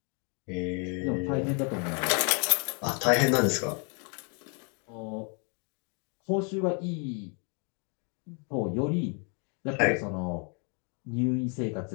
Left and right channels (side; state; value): right; quieter; 37.5 dB